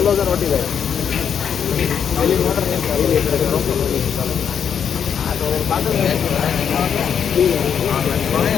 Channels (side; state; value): right; quieter; 7.8 dB